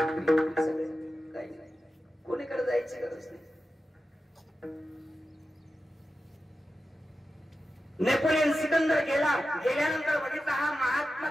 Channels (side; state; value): both; normal; correlation 0.92